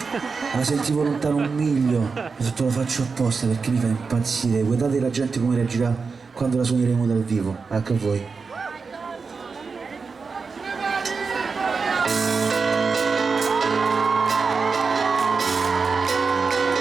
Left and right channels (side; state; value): left; quieter; 4.8 dB